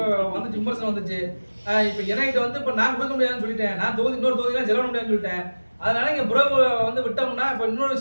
வந்துச்சு, விமர்சனம் வந்துச்சு. இப்ப என்கிட்ட வந்து இப்ப நான் கொடுக்க முடியாதுன்னு சொல்லிட்டேன். நான் இன்னொரு தொகுதியெல்லாம் செலவு முடியாதுன்னு சொல்லிட்டேன். அதனால இங்க புறவு வந்து விட்டோம்னா இப்ப இன்னொரு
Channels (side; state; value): both; inverted; correlation -1.00